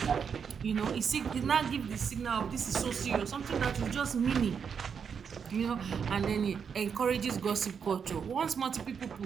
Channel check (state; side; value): quieter; left; 6.8 dB